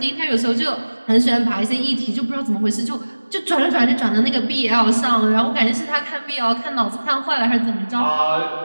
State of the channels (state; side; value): inverted; both; correlation -1.00